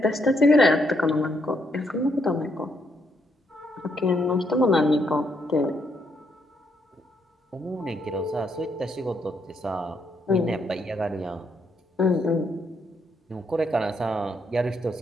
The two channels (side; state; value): both; normal; correlation 0.75